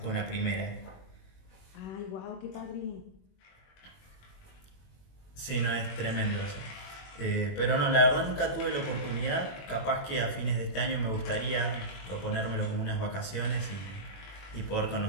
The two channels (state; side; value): late; right; 21 ms